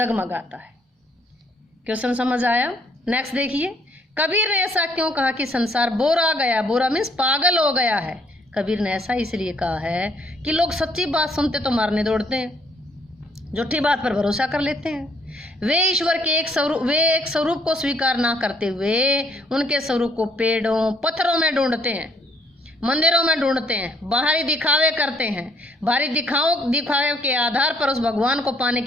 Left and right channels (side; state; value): both; normal; correlation 0.66